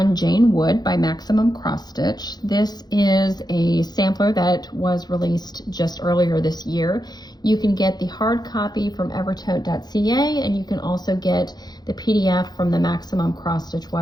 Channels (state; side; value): late; right; 0.20 ms